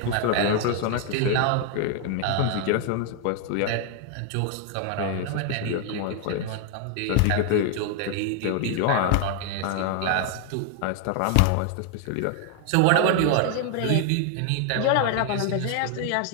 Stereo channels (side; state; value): both; different; correlation 0.00